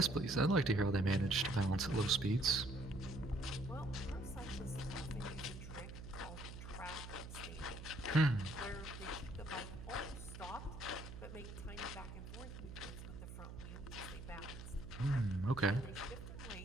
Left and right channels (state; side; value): noise; right; hum, 10 dB below the sound